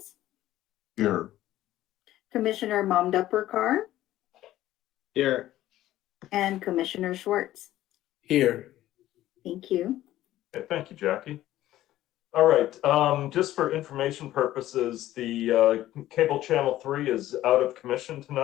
Here. Commissioner Mamdapurkar, Here. and Commissioner Schwartz. Here. Thank you. Okay, thank you, Jackie. All right, just for information purposes, the cable channel 3 is out of commission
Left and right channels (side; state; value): right; quieter; 14.3 dB